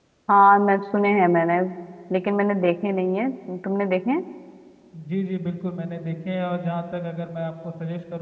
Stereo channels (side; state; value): both; identical; correlation 1.00